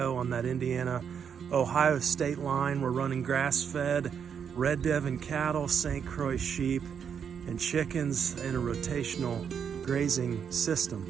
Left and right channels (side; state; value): left; quieter; 7.4 dB